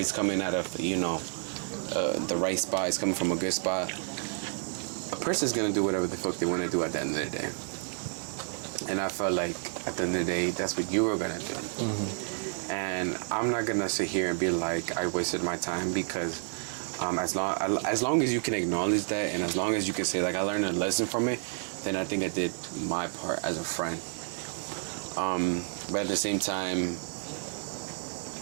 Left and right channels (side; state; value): left; silent; 57 dB below the other